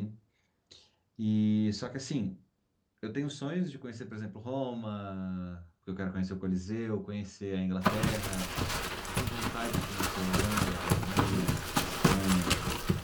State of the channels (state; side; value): identical; both; correlation 1.00